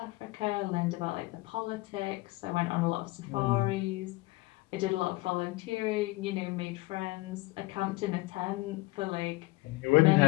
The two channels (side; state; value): right; quieter; 21.3 dB